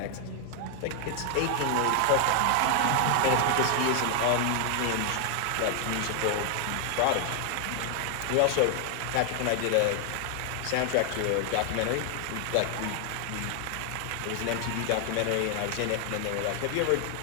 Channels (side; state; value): both; different; correlation 0.00